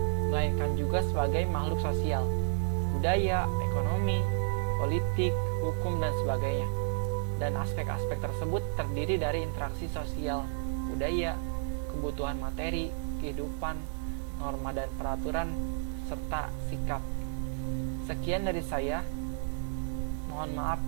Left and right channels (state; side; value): silent; left; 57 dB below the other